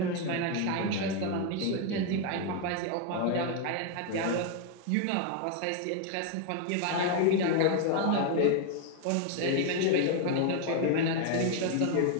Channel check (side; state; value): both; different; correlation 0.00